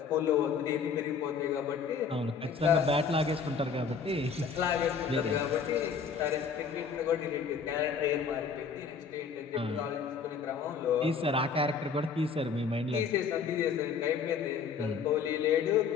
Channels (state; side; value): quieter; right; 5.8 dB